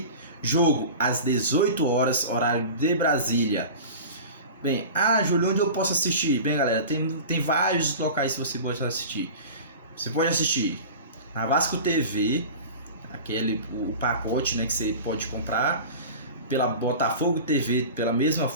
Jogo às 18 horas, horário de Brasília. Bem, Júlio, onde eu posso assistir? Bem, galera, tem vários locais que você pode assistir. Você pode assistir na Vasco TV, o pacote, né, que você pode comprar, pela Botafogo TV pela mesma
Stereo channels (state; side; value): inverted; both; correlation -0.35